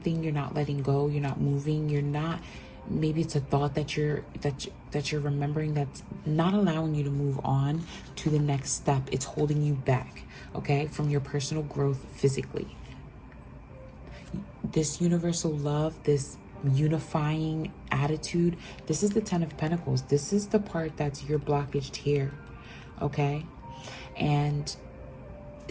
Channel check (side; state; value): both; identical; correlation 1.00